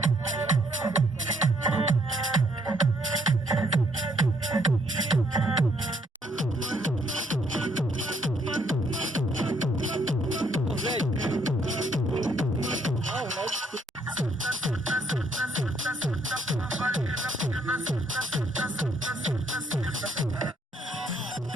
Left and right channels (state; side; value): normal; both; correlation 0.69